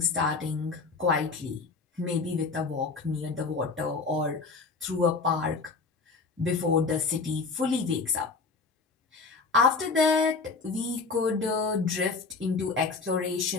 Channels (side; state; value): right; quieter; 4.3 dB